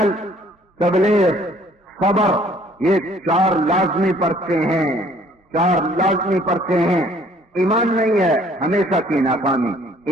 تبلیغ، صبر، یہ 4 لازمی پرچے ہیں، 4 لازمی پرچے ہیں۔ ایمان نہیں ہے ہمیشہ کی ناکامی،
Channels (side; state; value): both; normal; correlation 0.58